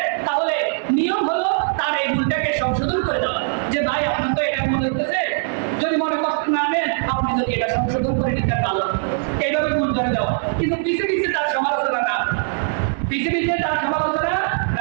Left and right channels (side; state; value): left; silent; digital silence